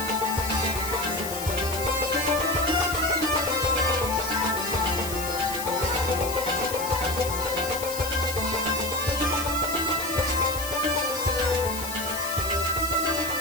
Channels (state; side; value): noise; left; hiss, 8 dB below the sound